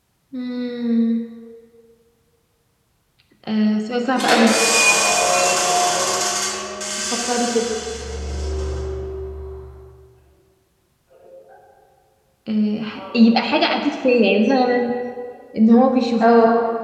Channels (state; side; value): identical; both; correlation 1.00